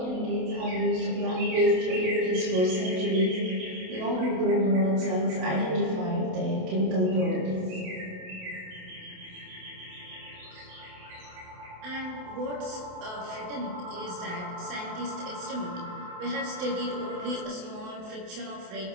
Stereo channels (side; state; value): left; late; 27 ms